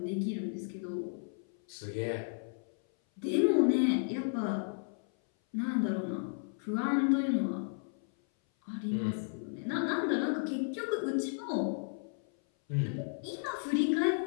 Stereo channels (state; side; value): silent; right; 55 dB below the other